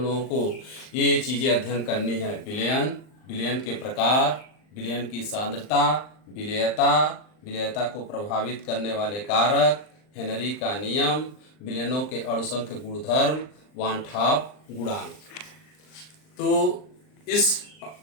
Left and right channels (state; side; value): late; right; 39 ms